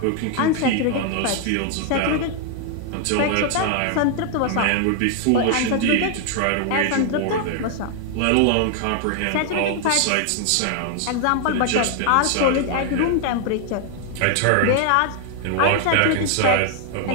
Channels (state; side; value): different; both; correlation 0.00